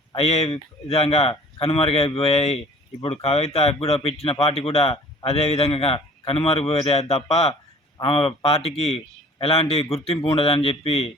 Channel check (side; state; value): both; normal; correlation 0.49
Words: అయ్యే విధంగా కనుమరుగైపోయాయి. ఇప్పుడు కవిత కూడా పెట్టిన పార్టీ కూడా అదే విధంగా కనుమరుగైపోతే తప్ప ఆమె పార్టీకి ఎలాంటి గుర్తింపు ఉండదని చెప్పి